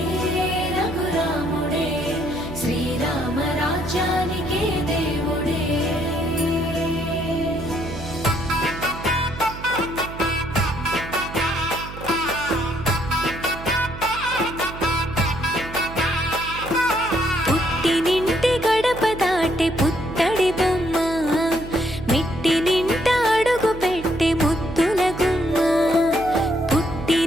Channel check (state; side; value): noise; right; hum, 12 dB below the sound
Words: రఘురాముడే శ్రీరామ రాజ్యానికే దేవుడే. పుట్టినింటి గడప దాటే పుత్తడి బొమ్మ, మెట్టినింట అడుగు పెట్టే ముద్దుల గుమ్మ.